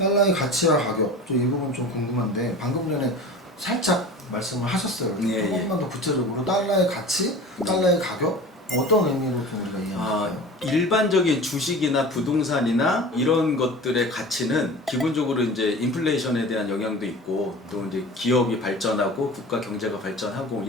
가치와 가격, 이 부분 좀 궁금한데 방금 전에 살짝 말씀을 하셨어요. 조금만 더 구체적으로 달러의 가치, 달러의 가격 어떤 의미로 좀 우리가 이해할까요? 일반적인 주식이나 부동산이나 이런 것들의 가치는 기본적으로 이제 인플레이션에 대한 영향도 있고 또 이제 기업이 발전하고 국가 경제가 발전하고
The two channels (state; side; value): normal; both; correlation 0.37